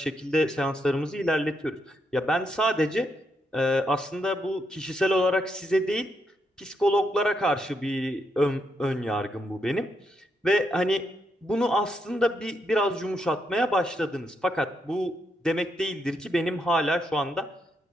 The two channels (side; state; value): both; normal; correlation 0.80